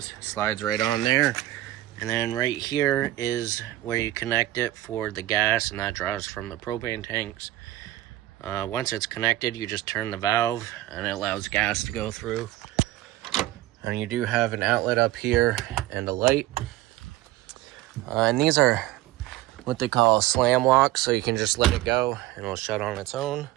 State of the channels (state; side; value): quieter; left; 15.8 dB